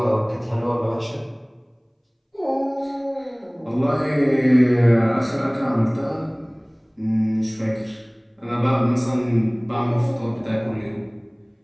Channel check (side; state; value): both; identical; correlation 1.00